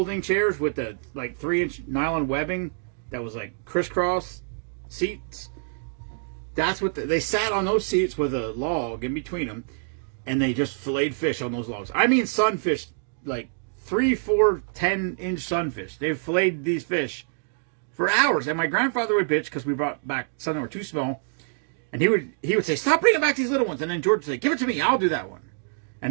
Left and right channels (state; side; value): silent; left; digital silence